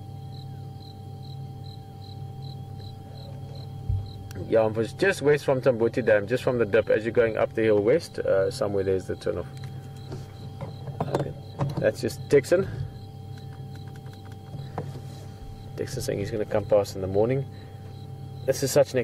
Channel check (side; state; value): both; identical; correlation 1.00